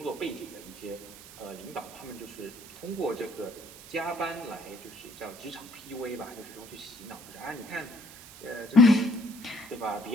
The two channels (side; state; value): right; noise; hiss, 16 dB below the sound